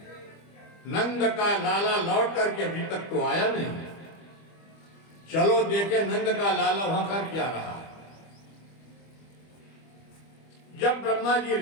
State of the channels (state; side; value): late; right; 25 ms